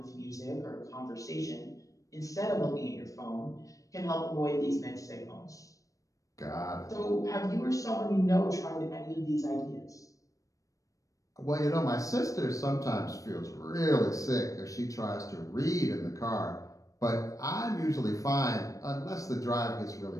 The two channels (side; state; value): right; late; 0.16 ms